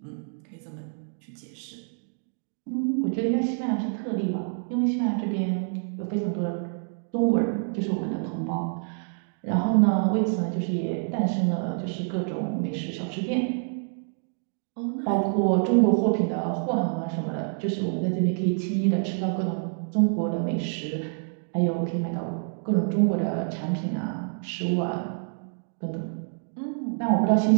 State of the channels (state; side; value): silent; left; 60 dB below the other